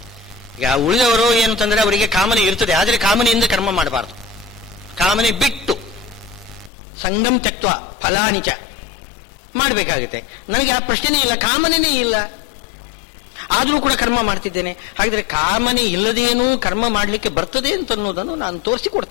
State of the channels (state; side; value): drops out; right; at 6.7 s